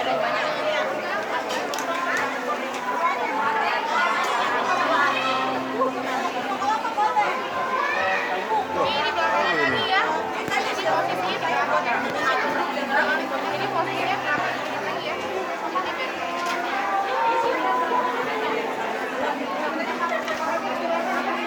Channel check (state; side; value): identical; both; correlation 1.00